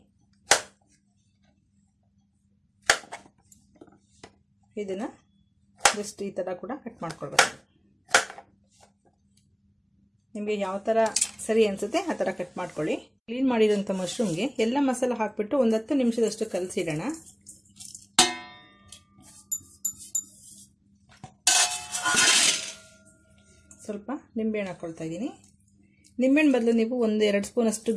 ಇದನ್ನ ಜಸ್ಟ್ ಈ ತರ ಕೂಡ ಕಟ್ ಮಾಡ್ಕೊಳ್ಬೇಕು. ನಿಮಗೆ ಯಾವ ತರ ಸರಿ ಅನ್ಸುತ್ತೆ ಆ ತರ ಕಟ್ ಮಾಡ್ಕೊಳ್ಳಿ. ಕ್ಲೀನ್ ಮಾಡಿರೋಂಥ ಮಶ್ರೂಮ್ಗೆ ಎಲ್ಲ ಮಸಾಲ ಹಾಕ್ಬಿಟ್ಟು ಒಂದು 10 ನಿಮಿಷದಷ್ಟು ಕಲಸಿಡೋಣ. ಸ್ವಲ್ಪ ನಿಂಬೆಹಣ್ಣು ಹಾಕೊಳ್ತಾ ಇದ್ದೀನಿ. ನಿಂಬೆಹಣ್ಣು ಬದಲು ನೀವು 1-2 ಸ್ಪೂನ್ ಅಷ್ಟು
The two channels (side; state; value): both; identical; correlation 1.00